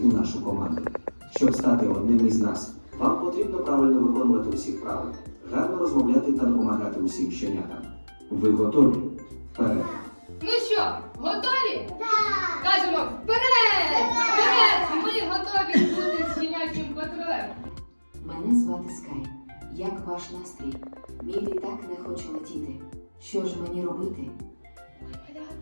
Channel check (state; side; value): inverted; both; correlation -1.00